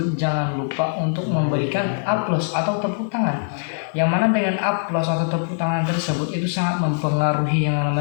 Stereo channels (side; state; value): right; silent; 63 dB below the other